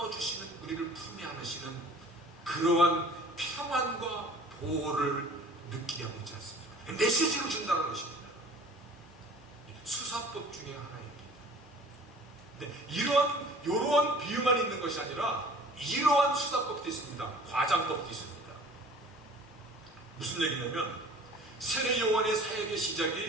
주시는, 우리를 품에 안으시는 그러한 평안과 보호를 느끼게 하고 있지 않습니까? 메시지를 준다는 것입니다. 수사법 중에 하나입니다. 근데 이러한 비유만 있는 것이 아니라 이러한 수사법도 있습니다. 과장법도 있습니다. 무슨 얘기냐면 세례 요한의 사역의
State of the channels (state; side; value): normal; both; correlation 0.48